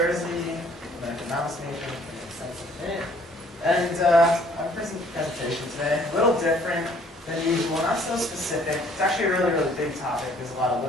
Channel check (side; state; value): both; normal; correlation 0.59